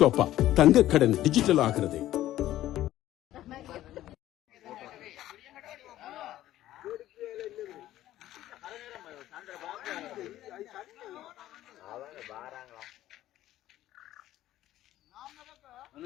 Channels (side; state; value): right; quieter; 13.9 dB